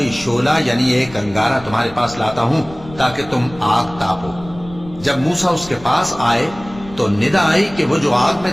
شعلہ یعنی ایک انگارہ تمہارے پاس لاتا ہوں تاکہ تم آگ تاپو۔ جب موسیٰ اس کے پاس آئے تو ندا آئی کہ وہ جو آگ میں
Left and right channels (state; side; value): noise; left; rumble, 18 dB below the sound